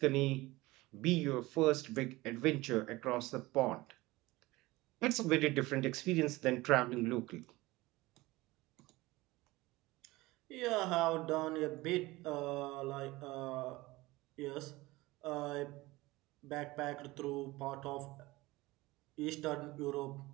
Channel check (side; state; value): left; quieter; 20.2 dB